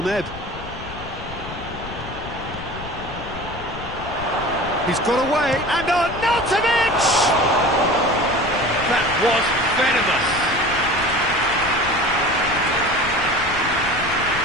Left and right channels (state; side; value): noise; left; rumble, 12 dB below the sound